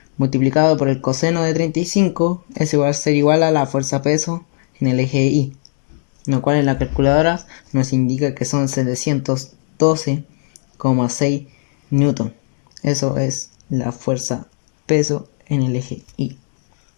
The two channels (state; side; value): silent; right; digital silence